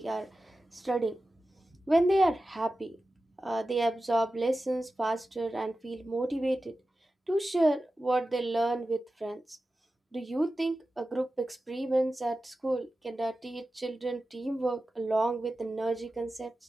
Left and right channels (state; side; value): normal; both; correlation 0.94